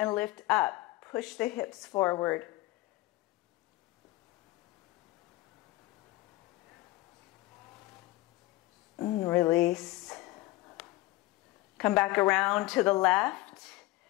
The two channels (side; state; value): right; quieter; 19.0 dB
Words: lift up. Push the hips forward. And release. Come back around to the left.